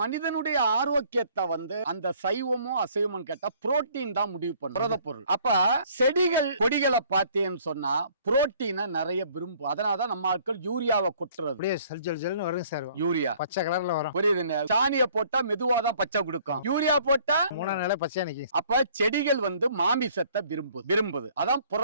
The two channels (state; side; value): inverted; both; correlation -0.58